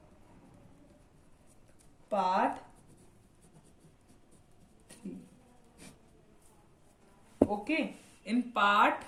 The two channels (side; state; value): both; identical; correlation 1.00